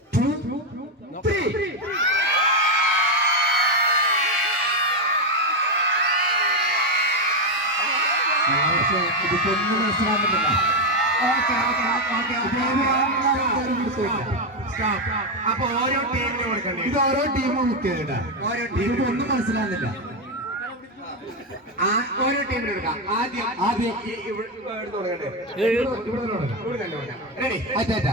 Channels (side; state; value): both; normal; correlation 0.07